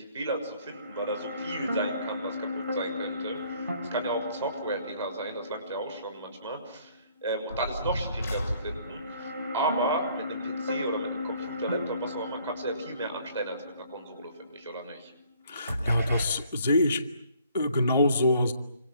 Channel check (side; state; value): both; inverted; correlation -0.61